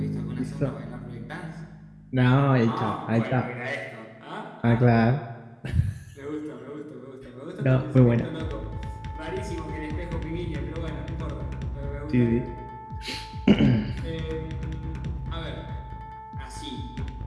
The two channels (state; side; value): identical; both; correlation 1.00